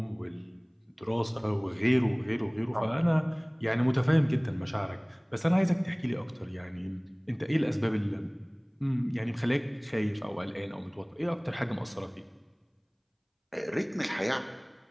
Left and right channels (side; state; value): both; identical; correlation 1.00